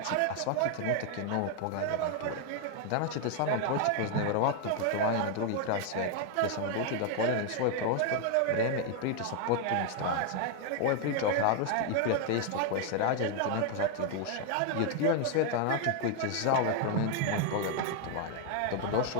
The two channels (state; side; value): different; both; correlation 0.00